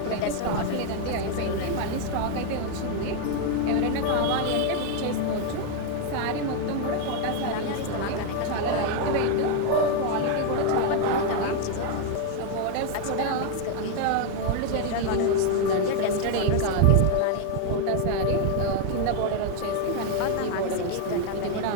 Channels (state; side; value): different; both; correlation 0.00